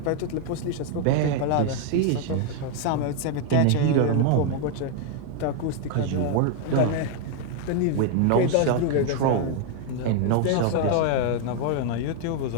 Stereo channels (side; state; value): both; different; correlation 0.00